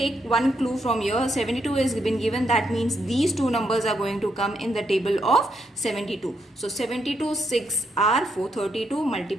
one clue from here. 72 is been given, that means these two numbers are going to come in the table of 72. So 72 6 are 432,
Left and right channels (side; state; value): both; normal; correlation 0.78